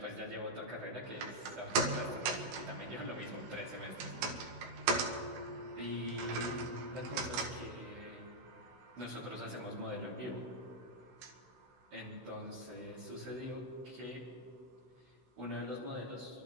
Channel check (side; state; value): left; late; 16 ms